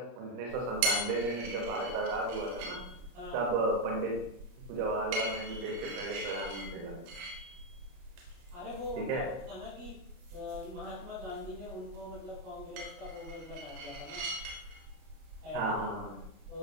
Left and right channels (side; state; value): left; late; 30 ms